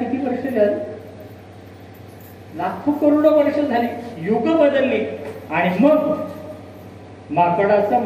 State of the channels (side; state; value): both; identical; correlation 1.00